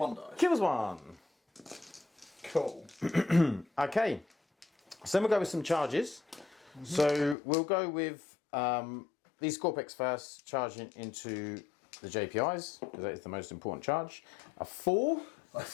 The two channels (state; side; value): drops out; right; at 7.4 s